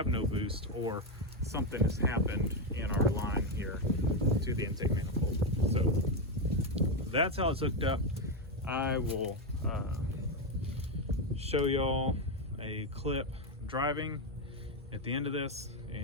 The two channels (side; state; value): both; normal; correlation 0.07